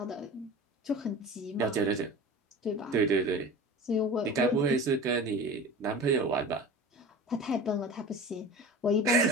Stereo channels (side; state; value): both; normal; correlation 0.36